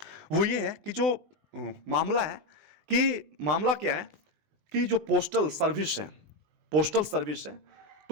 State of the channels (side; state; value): left; late; 20 ms